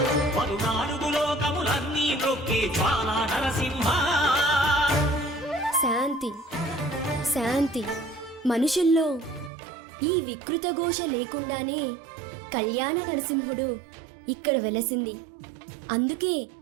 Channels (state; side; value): drops out; left; at 9.5 s